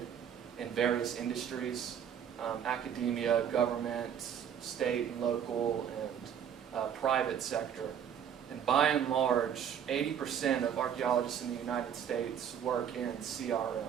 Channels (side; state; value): left; quieter; 8.7 dB